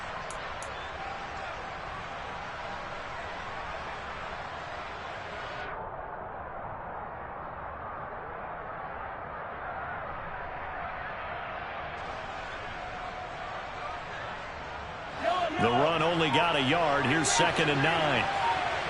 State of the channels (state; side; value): identical; both; correlation 1.00